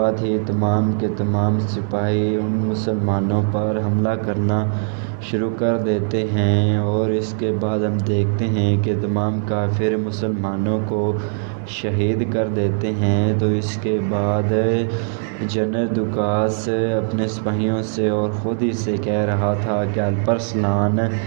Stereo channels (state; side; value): silent; left; digital silence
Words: ہی تمام کے تمام سپاہی ان مسلمانوں پر حملہ کرنا شروع کر دیتے ہیں، اور اس کے بعد ہم دیکھتے ہیں کہ تمام کافر مسلمانوں کو شہید کر دیتے ہیں۔ تو اس کے بعد جنرل دوکاس اپنے سپاہیوں سے اور خود ہی سے کہہ رہا تھا کہ الپرسلان،